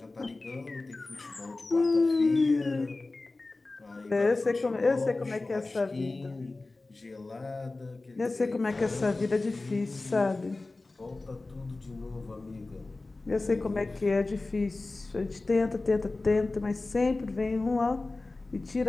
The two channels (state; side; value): quieter; right; 3.3 dB